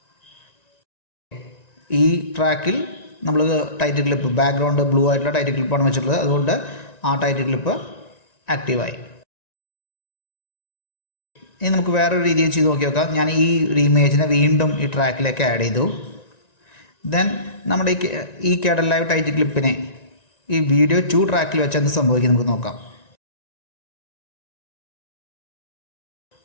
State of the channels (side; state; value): right; late; 1.9 ms